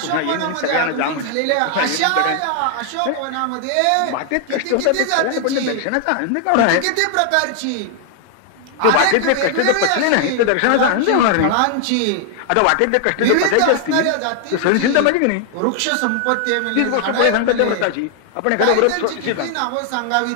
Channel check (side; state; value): both; different; correlation 0.00